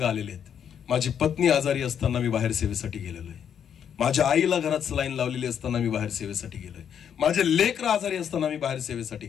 आलेले आहेत. माझी पत्नी आजारी असताना मी बाहेर सेवेसाठी गेलेलो आहे. माझ्या आईला घरात सलाईन लावलेली असताना मी बाहेर सेवेसाठी गेलोय. माझे लेकर आजारी असताना मी बाहेर सेवेसाठी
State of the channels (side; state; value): right; quieter; 8.5 dB